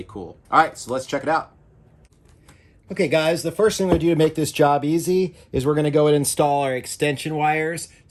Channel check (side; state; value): both; identical; correlation 1.00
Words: cool. All right, so let's check it out. Okay, guys, the first thing we do to make this job easy is we're going to go and install our extension wires.